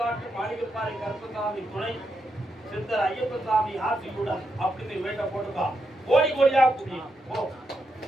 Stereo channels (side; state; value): both; normal; correlation 0.83